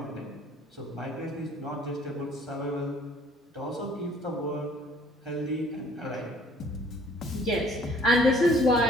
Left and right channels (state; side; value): normal; both; correlation 0.57